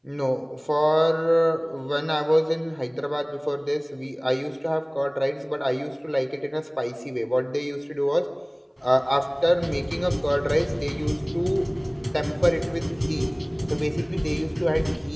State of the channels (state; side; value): identical; both; correlation 1.00